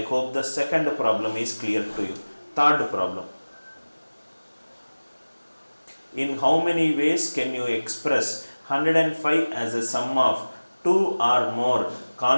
hope the second problem is clear to you. Third problem. In how many ways can you express 105 as a sum of 2 or more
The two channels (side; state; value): both; inverted; correlation -1.00